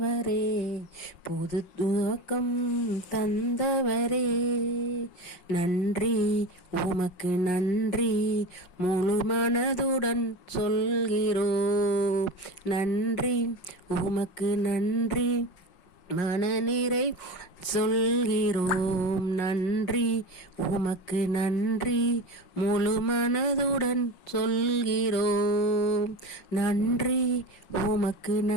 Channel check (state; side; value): late; right; 5.5 ms